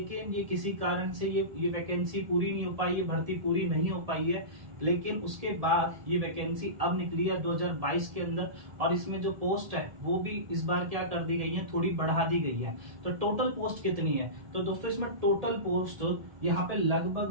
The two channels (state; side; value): late; left; 1.7 ms